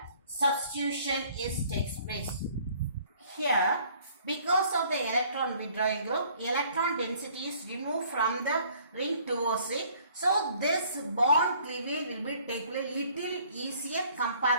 substitution takes place. Here because of the electron withdrawing group, electron density is removed from the ring towards it. So this bond cleavage will be taken a little easier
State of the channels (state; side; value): inverted; both; correlation -0.58